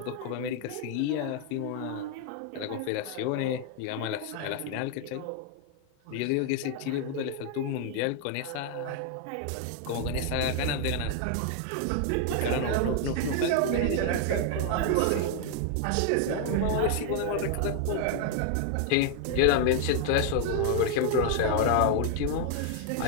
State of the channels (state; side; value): different; both; correlation 0.00